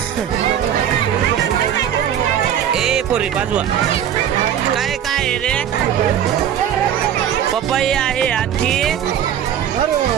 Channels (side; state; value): left; quieter; 9.6 dB